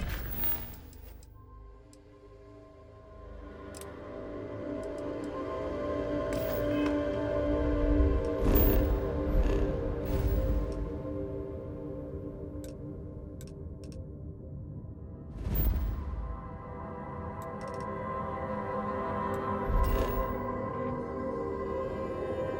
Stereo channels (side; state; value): both; identical; correlation 1.00